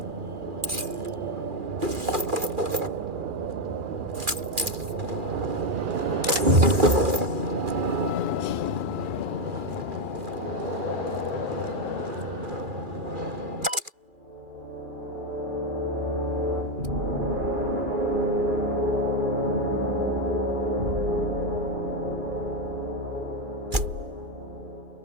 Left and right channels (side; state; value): left; late; 2.4 ms